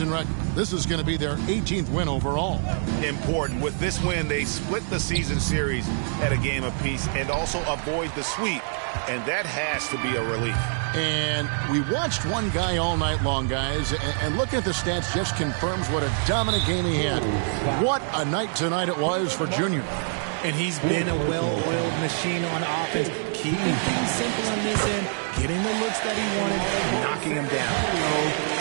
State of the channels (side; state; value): left; silent; digital silence